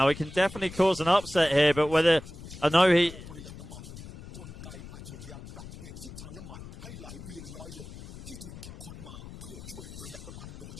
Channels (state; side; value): noise; left; rumble, 13 dB below the sound